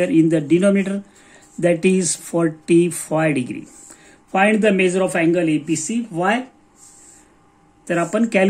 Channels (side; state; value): both; identical; correlation 1.00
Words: in the denominator, that is 45 degree. Find the measure of angle ABC. Why? तर आपण